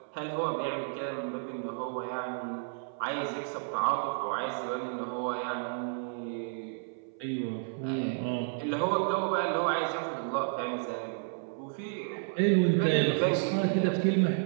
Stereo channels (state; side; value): silent; left; 57 dB below the other